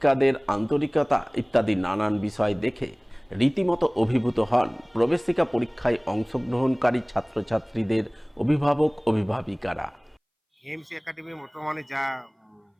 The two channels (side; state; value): both; identical; correlation 1.00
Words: আন্তরিকতা ইত্যাদি নানান বিষয় দেখে রীতিমতো অভিভূত হন প্রবেশিকা পরীক্ষায় অংশগ্রহণকারী ছাত্রছাত্রীদের অভিভাবক অভিভাবিকারা। এইমস একাডেমি বর্তমানে যা